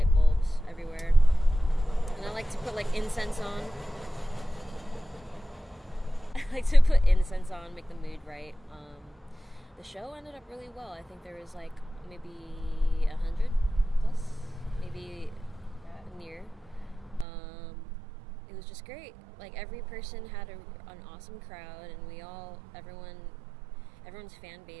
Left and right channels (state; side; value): drops out; left; at 17.2 s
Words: bulbs everywhere. And I like to put, like, incense on. Make the mood right. The show ended up really well. I think there was, like, maybe 100 plus, maybe near. It was just great. Like, every person had an awesome crowd, and everyone's fan